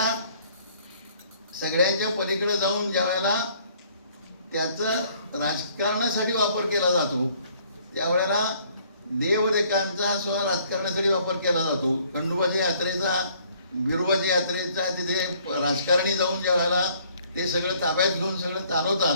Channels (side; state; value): both; inverted; correlation -0.61